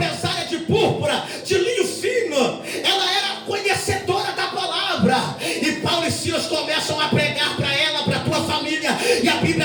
de púrpura, de linho fino. Ela era conhecedora da palavra. E Paulo e Silas começam a pregar para ela, para a tua família. E a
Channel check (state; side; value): identical; both; correlation 1.00